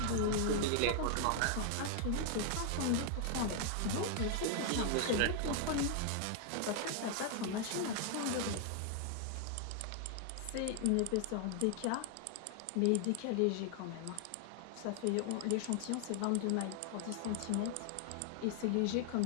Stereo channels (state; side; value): different; both; correlation 0.00